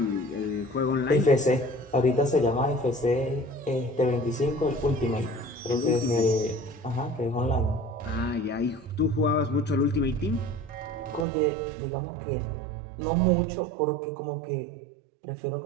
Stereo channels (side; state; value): left; drops out; at 11.2 s